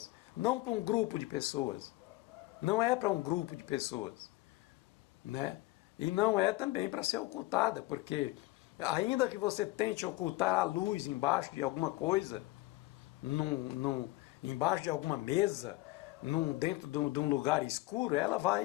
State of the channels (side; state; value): right; quieter; 19.2 dB